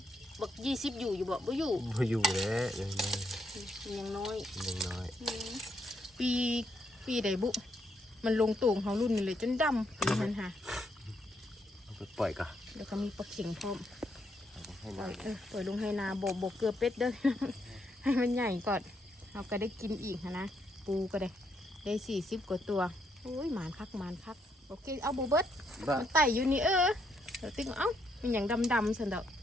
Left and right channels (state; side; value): normal; both; correlation 0.76